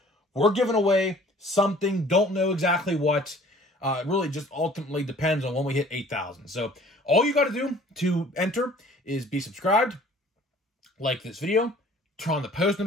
we're giving away something, don't know exactly what. It really just ultimately depends on when we hit 8,000. So all you got to do to enter is be subscribed, like this video, turn on the post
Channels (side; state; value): both; normal; correlation 0.52